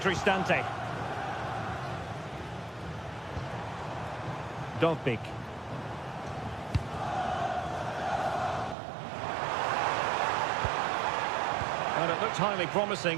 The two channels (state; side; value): drops out; left; at 8.8 s